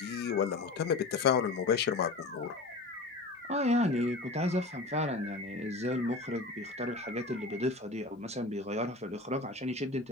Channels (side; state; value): right; quieter; 3.2 dB